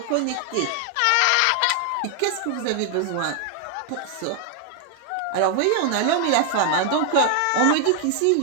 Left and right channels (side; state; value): both; different; correlation 0.00